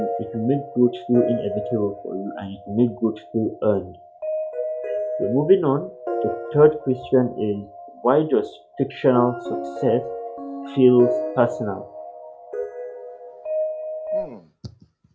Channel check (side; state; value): both; identical; correlation 1.00